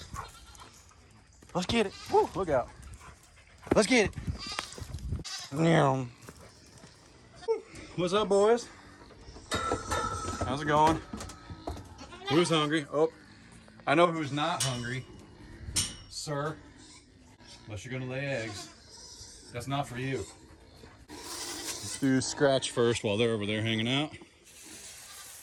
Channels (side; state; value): both; identical; correlation 1.00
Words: Let's get it. Woo, look out. Let's get it. What's up, boys? How's it going? Who's hungry? Oh, I know who's not hungry. Sir, unless you're gonna lay eggs. That's not for you. Let's do scratch first while they're over there hanging out.